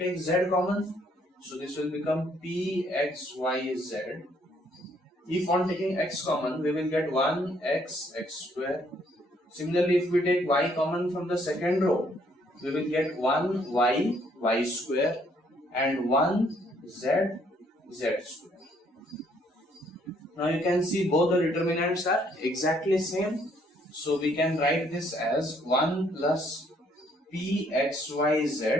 z common. So this will become p x y z. If on taking x common, we will get 1 x square. Similarly, if we take y common from the second row, we will get 1 y square and 1 z square. Now you can see both the determinants are exactly same. So we can write this as 1 plus p x y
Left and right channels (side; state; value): both; normal; correlation 0.67